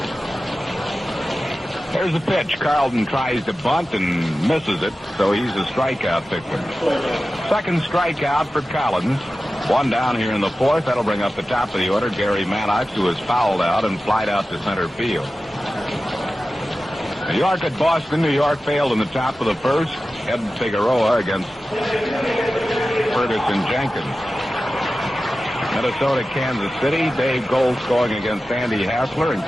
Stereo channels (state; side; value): normal; both; correlation 0.94